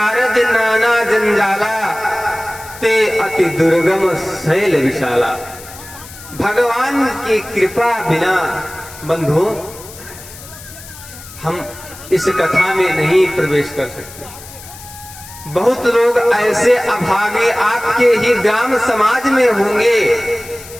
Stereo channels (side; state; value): left; noise; hiss, 17 dB below the sound